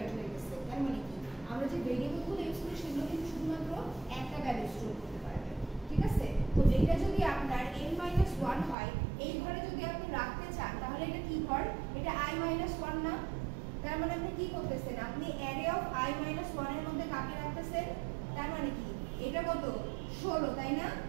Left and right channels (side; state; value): left; drops out; at 8.8 s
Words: হয়ে গেছে। তার মানে কি, আমরা যে ভেরিয়েবলগুলো ইউজ করি সেগুলো কিন্তু শুধুমাত্র একটা ভ্যালু স্টোর করতে পারবে, ঠিক আছে? তো এটা যদি আপনার n-1 হয়, এই ঘরে যদি আপনি রাখতে চান তাহলে এটা কি ঘর? এটা i-1 না? তার মানে আপনি কি করতেছেন? আপনি অ্যারে অফ i-1 এর মধ্যে কাকে রাখতেছেন? তার মানে কি, এটা কত? 16, তাই না?